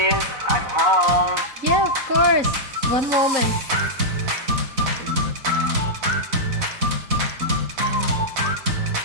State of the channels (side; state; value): left; late; 4.0 ms